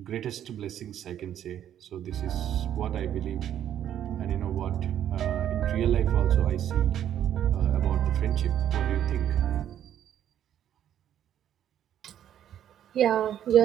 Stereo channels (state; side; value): quieter; left; 10.5 dB